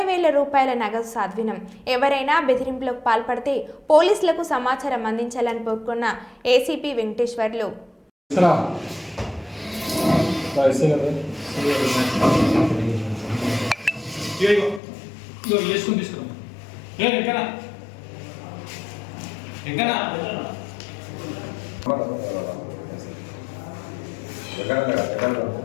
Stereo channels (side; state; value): right; drops out; at 14.8 s